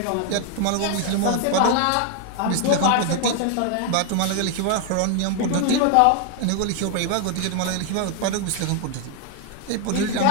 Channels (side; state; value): both; different; correlation 0.00